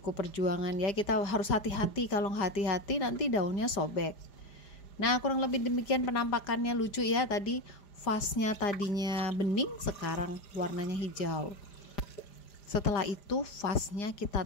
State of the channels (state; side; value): late; right; 5.0 ms